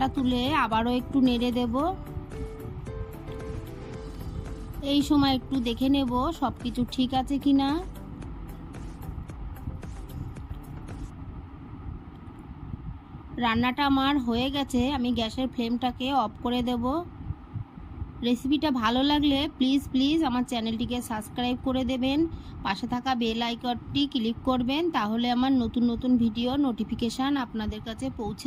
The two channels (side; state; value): both; identical; correlation 1.00